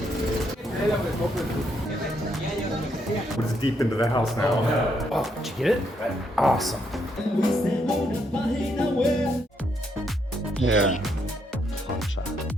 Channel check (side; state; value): both; normal; correlation 0.75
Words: We're just deep into the house now. Oh, did you get it? Awesome. Yeah. Plancha,